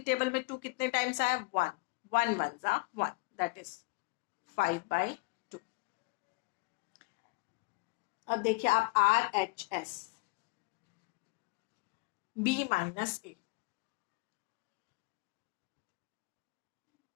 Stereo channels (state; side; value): quieter; right; 26.6 dB